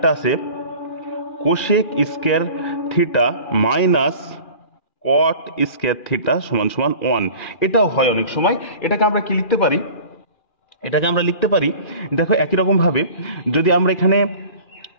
আছে cosec square theta minus cot square theta সমান সমান 1। এটাও হয় অনেক সময়। এটাকে আমরা কি লিখতে পারি? এটাকে আমরা লিখতে পারি, দেখো একই রকম ভাবে যদি আমরা এখানে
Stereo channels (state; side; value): late; right; 2.4 ms